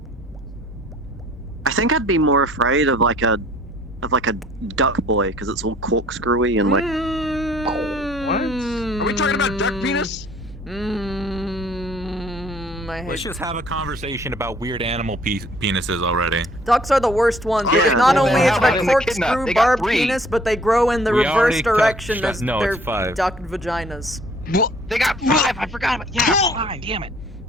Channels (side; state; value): both; normal; correlation 0.57